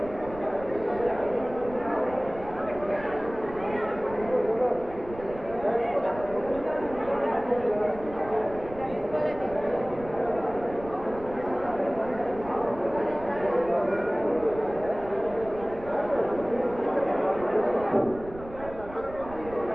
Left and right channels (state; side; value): noise; right; rumble, 15 dB below the sound